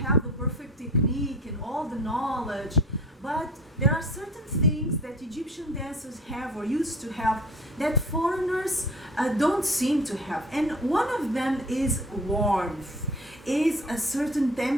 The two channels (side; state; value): both; normal; correlation 0.43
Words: the perfect technique and all the knowledge, but there are certain things that Egyptian dancers have or used to have that foreigners don't seem to have. And one of them is warmth, is a certain